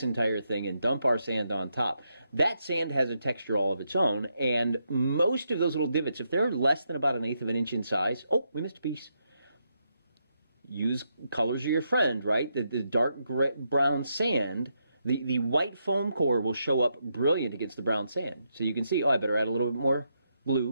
entire thing and dump our sand on top, that sand has a texture all of its own, and most of those little divots, if they're less than about 1/8 of an inch in size, oh, we missed a piece. Use colors are your friend, right? The dark brown sand, the white foam core will show up brilliant against the brown sand. So you can see, oh, I better add a little bit more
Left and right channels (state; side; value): inverted; both; correlation -0.81